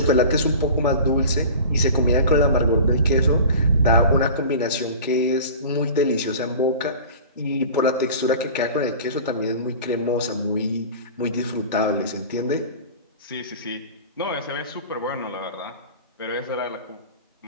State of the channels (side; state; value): both; inverted; correlation -0.37